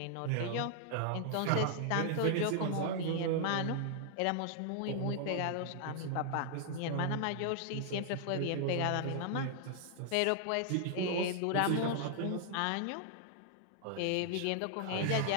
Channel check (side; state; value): both; different; correlation 0.00